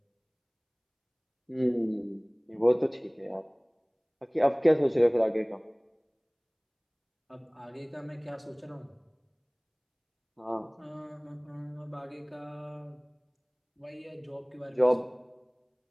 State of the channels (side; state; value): both; identical; correlation 1.00